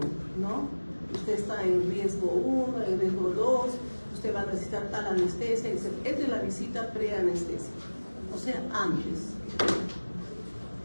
¿no? Usted está en riesgo 1, en riesgo 2, usted va a necesitar tal anestesia, etc. Es de la visita preanestesia, o sea, antes.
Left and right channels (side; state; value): both; inverted; correlation -1.00